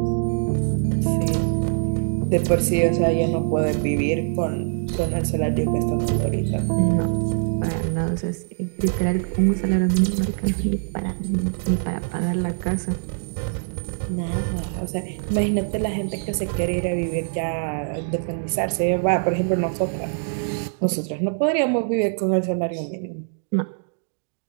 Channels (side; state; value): left; silent; digital silence